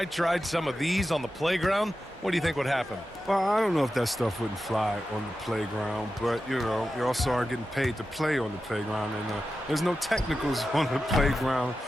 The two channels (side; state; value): both; normal; correlation 0.92